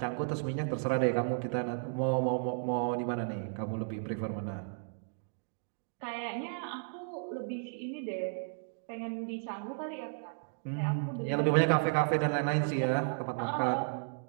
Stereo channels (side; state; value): left; silent; digital silence